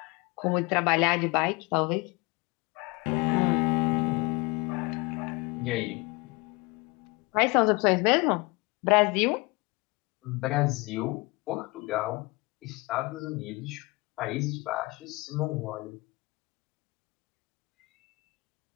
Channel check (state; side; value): quieter; right; 24.9 dB